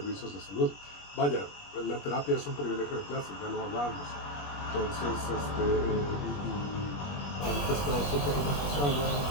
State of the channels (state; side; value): late; right; 21 ms